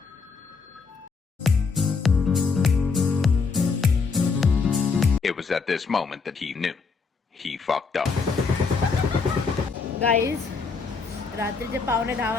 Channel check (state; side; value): quieter; right; 4.8 dB